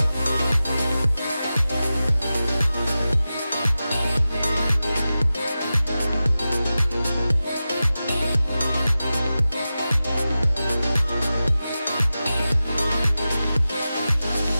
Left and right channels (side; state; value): both; inverted; correlation -0.93